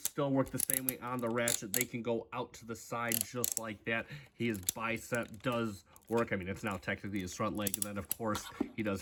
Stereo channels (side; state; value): both; identical; correlation 1.00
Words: still work the same way on the ratchet. They can go out to the side just like that. His bicep does work. I mean, it's now technically his front leg, and then of course he does